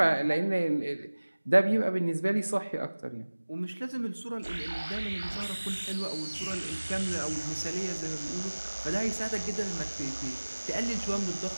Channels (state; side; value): inverted; both; correlation -1.00